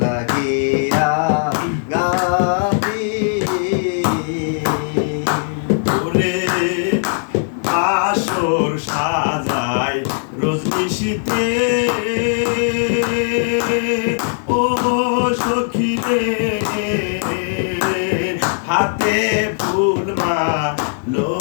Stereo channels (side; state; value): right; silent; digital silence